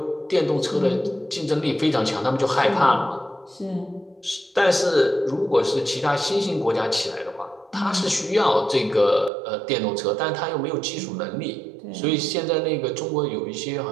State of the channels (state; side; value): drops out; left; at 9.3 s